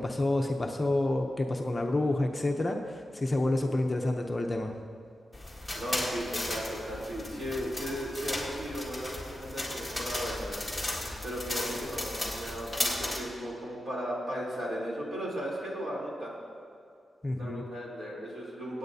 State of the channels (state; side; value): normal; both; correlation 0.92